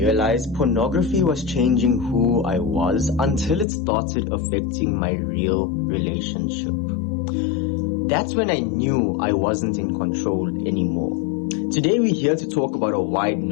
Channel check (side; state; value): right; drops out; at 3.7 s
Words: pornography was changing who I was until it started affecting my real relationship. That's when I knew I wasn't in control anymore. Today we're here to talk about a